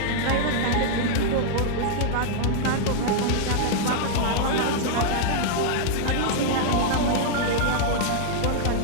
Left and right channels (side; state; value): both; different; correlation -0.01